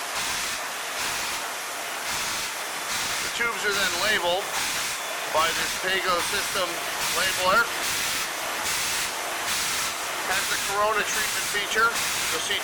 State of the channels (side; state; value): both; identical; correlation 1.00